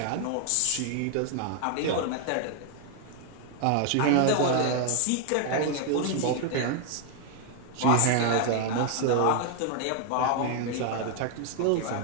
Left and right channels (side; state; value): both; different; correlation 0.00